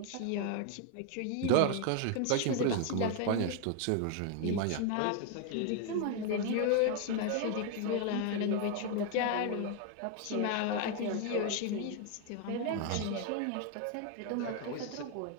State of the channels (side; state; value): both; different; correlation 0.01